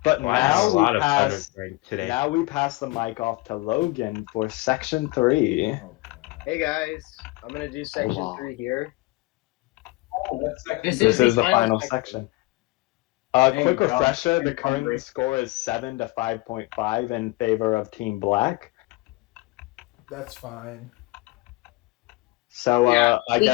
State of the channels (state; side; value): quieter; right; 22.0 dB